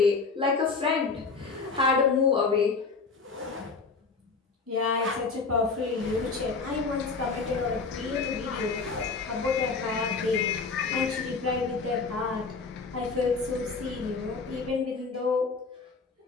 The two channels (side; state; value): right; quieter; 4.5 dB